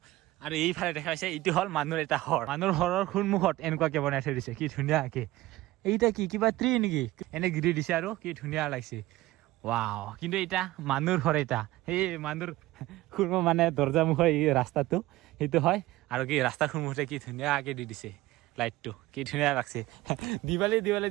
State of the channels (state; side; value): quieter; left; 17.6 dB